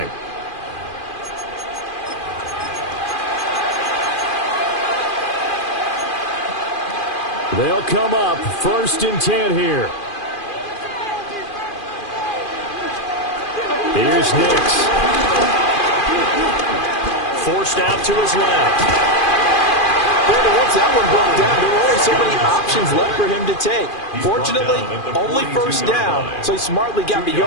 They'll come up 1st and 10 here. Here's Nix. Forced out to his left. Once that one broke down, there were only so many options left for him to take. Fortunately, only first down, so he smartly got the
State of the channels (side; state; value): right; late; 2.4 ms